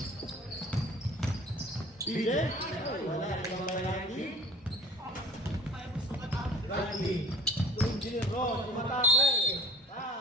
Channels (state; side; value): normal; both; correlation 0.45